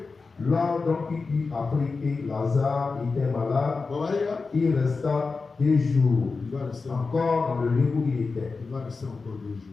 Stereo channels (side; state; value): right; quieter; 4.3 dB